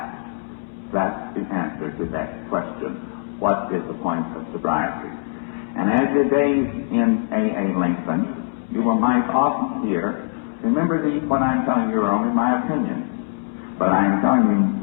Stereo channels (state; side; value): silent; right; 64 dB below the other